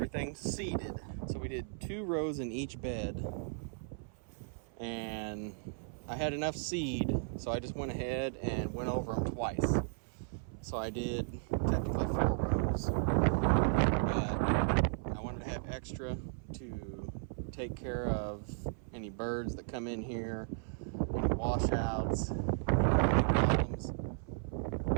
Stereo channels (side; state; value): left; silent; 54 dB below the other